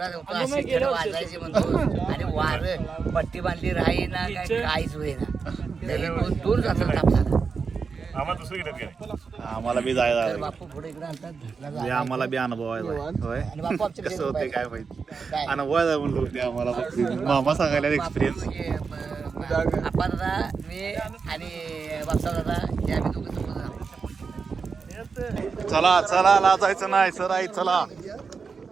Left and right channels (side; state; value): left; quieter; 5.3 dB